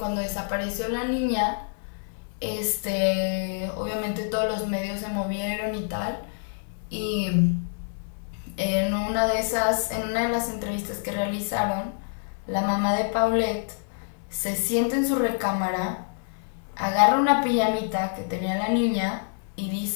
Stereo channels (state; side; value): silent; right; digital silence